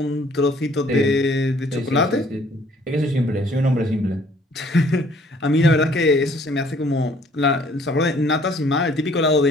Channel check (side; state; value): both; normal; correlation 0.59